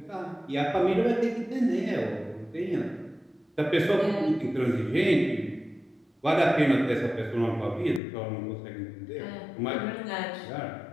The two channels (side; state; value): right; drops out; at 8.0 s